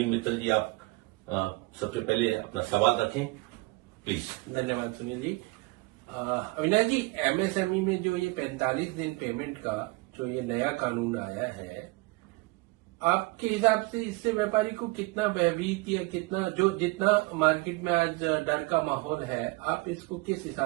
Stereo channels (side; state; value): left; quieter; 24.5 dB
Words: मित्तल जी आप सबसे पहले अपना सवाल रखें, प्लीज। धन्यवाद सुनील जी। अविनाश जी, एमएसएमई में जो ये 45 दिन पेमेंट का जो ये नया कानून आया है, आपके हिसाब से इससे व्यापारी को कितना भयभीत या जितना मार्केट में आज डर का माहौल है, आप इसको किस